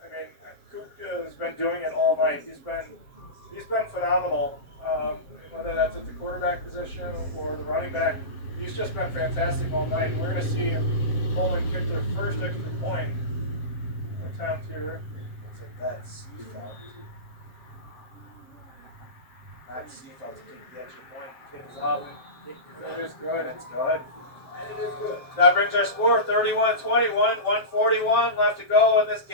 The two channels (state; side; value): late; right; 7.5 ms